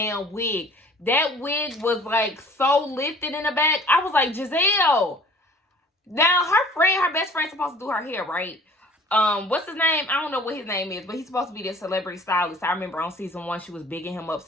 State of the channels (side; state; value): both; normal; correlation 0.50